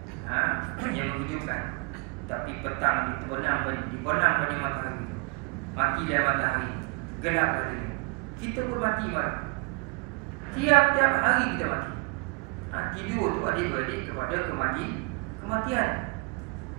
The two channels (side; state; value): left; quieter; 31.5 dB